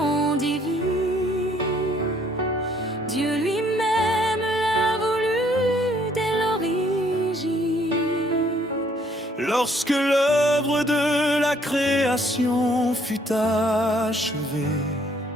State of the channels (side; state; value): both; normal; correlation 0.64